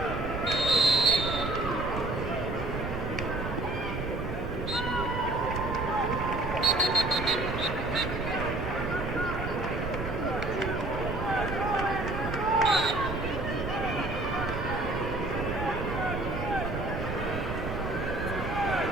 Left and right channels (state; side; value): noise; right; rumble, 6 dB below the sound